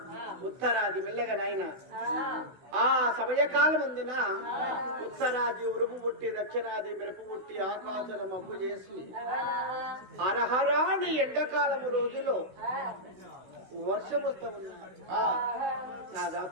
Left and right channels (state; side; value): late; left; 16 ms